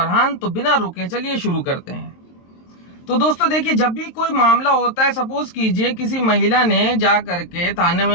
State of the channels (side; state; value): right; late; 23 ms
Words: तो बिना रुके चलिए शुरू करते हैं। तो दोस्तों देखिए, जब भी कोई मामला होता है, सपोज कीजिए किसी महिला ने जा करके थाने